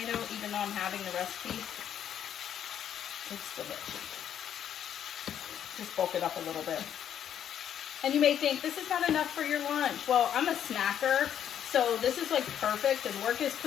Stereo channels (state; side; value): quieter; right; 9.7 dB